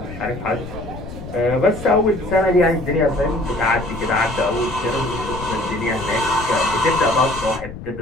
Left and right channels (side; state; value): left; noise; rumble, 12 dB below the sound